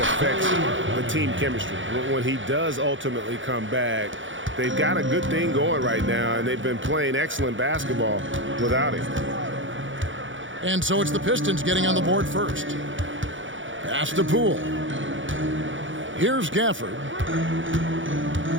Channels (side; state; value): left; late; 0.56 ms